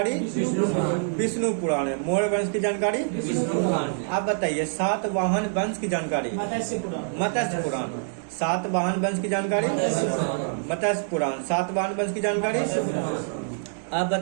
विष्णु पुराण है। मौर्य वंश की जानकारी आप बताइए सातवाहन वंश की जानकारी मत्स्य पुराण। सातवाहन वंश की जानकारी मत्स्य पुराण। सातवाहन वंश की जानकारी आप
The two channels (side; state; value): left; silent; digital silence